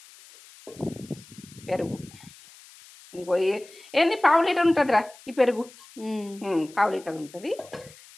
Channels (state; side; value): noise; left; hiss, 22 dB below the sound